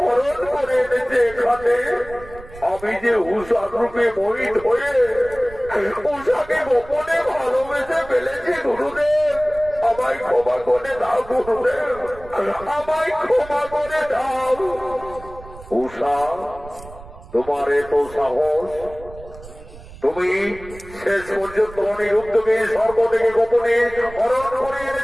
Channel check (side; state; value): right; noise; rumble, 18 dB below the sound